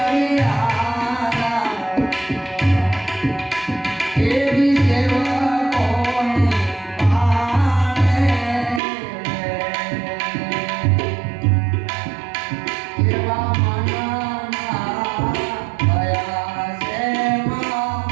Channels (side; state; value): left; drops out; at 8.8 s